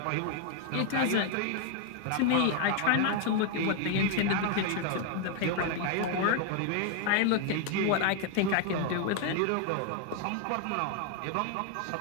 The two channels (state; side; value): different; both; correlation 0.00